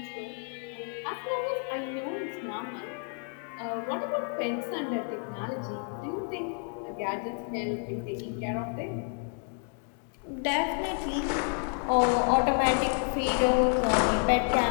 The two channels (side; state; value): right; quieter; 38.8 dB